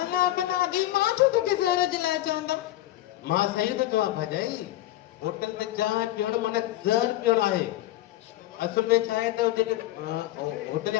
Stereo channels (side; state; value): right; quieter; 15.1 dB